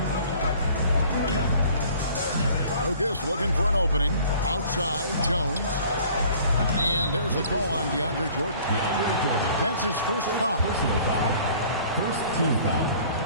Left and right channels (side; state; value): both; inverted; correlation -0.51